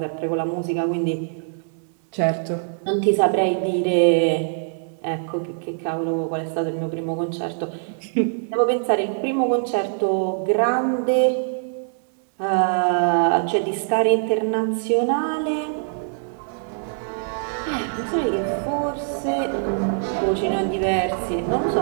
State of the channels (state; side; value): silent; left; digital silence